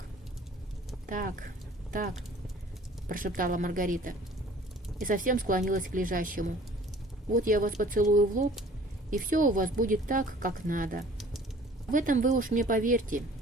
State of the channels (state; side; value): normal; both; correlation 0.51